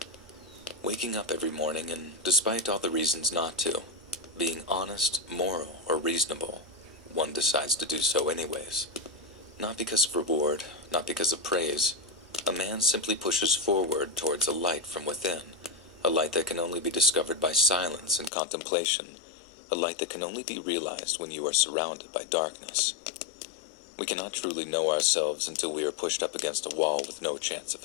Waking up every morning and, despite all the reasons not to, being honest, moral, or reasonable, one decides to do so anyways. Not because of reward, not because of praise. A man simply pushes forward towards a light from within, a light that can only be discovered by silence and contemplation, a light that can only be realized when you are surrounded by darkness. We cannot truly know ourselves until we are pushed up against a wall with no chance of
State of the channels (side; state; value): right; drops out; at 18.3 s